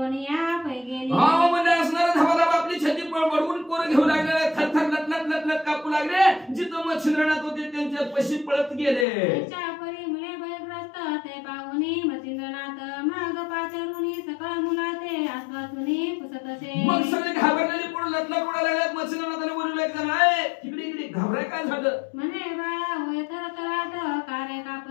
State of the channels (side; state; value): right; drops out; at 9.1 s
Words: या पै गेली. हा म्हणजे असणार धाबाधाब आपली छती बडवून पोरं घेऊ लागले थरथर लटलट कापू लागले. जिथं मच्छिंद्रनाथ होते त्यांच्या पशी पळत गेले. त्यांच्या परी मुले भयग्रस्त ते पाहुनी मच्छिंद्रनाथ माग पाचरुनी सकळ मुला ते आसवासुनी पुसत असे. मग सगळे घाबरलेले पळून लटलट उडायला लागले. मच्छिंद्रनाथाने बोलले एक जण आहे इकडे घाबराय काय झालं. म्हणे बाळा होय थरथराट कारे